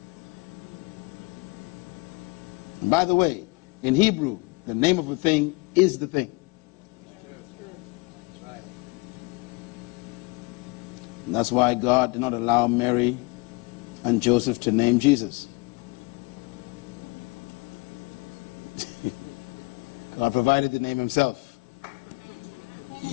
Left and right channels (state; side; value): quieter; right; 27.6 dB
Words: And by the way, in Hebrew, the name of a thing is the thing. And that's why God did not allow Mary and Joseph to name Jesus. God provided the name himself.